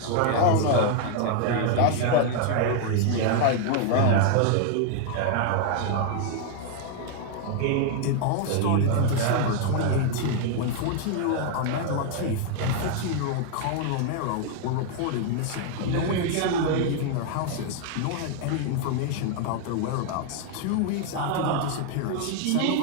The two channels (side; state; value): both; different; correlation 0.00